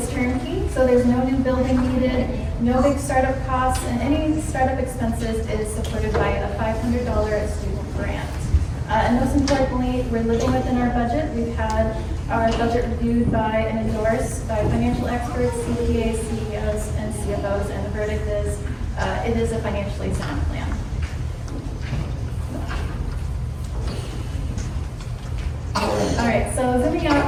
turnkey, so there's no new building needed, no big startup costs, and any startup expenses is supported by a $500 student grant. And most importantly, we're living within our budget. We've had our budget reviewed by and endorsed by financial experts, CPAs, CEOs, and CFOs, and the verdict is it is a financially sound plan. All right, so zooming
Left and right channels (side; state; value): both; identical; correlation 1.00